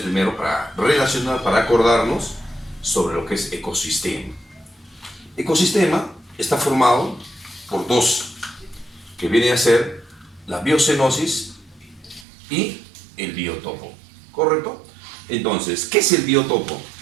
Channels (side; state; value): left; drops out; at 12.2 s